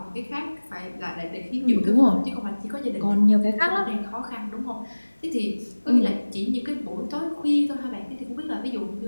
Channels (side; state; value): both; inverted; correlation -1.00